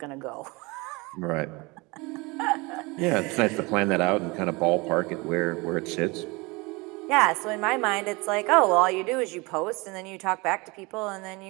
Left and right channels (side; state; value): left; quieter; 25.6 dB